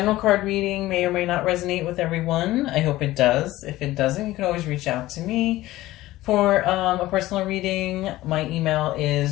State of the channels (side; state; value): right; quieter; 16.7 dB